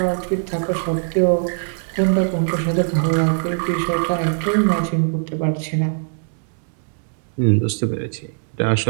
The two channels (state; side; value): silent; left; 61 dB below the other